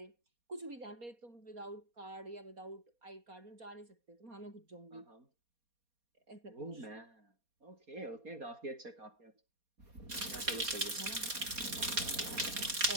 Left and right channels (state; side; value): late; left; 4.2 ms